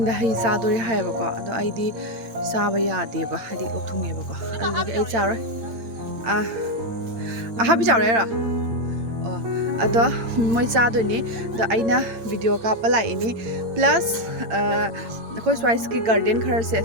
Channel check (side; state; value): left; late; 8.8 ms